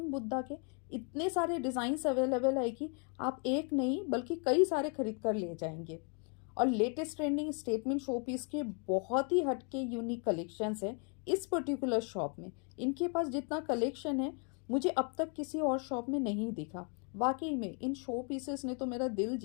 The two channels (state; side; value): quieter; right; 38.6 dB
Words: बुद्धा के इतने सारे डिज़ाइंस अवेलेबल है कि आप एक नहीं बल्कि कई सारे खरीद कर ले जाएंगे। और latest trending statement showpiece के बहुत ही हटके यूनिक कलेक्शंस है इस पर्टिकुलर शॉप में। इनके पास जितना कलेक्शन है मुझे अब तक किसी और शॉप में नहीं दिखा। वाकई में इन शो पीसेस ने तो मेरा दिल